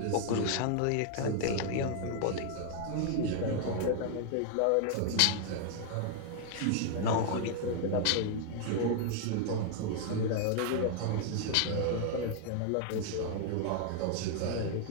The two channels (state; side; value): different; both; correlation 0.00